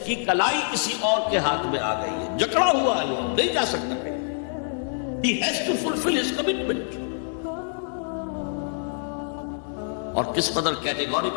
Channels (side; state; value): right; silent; digital silence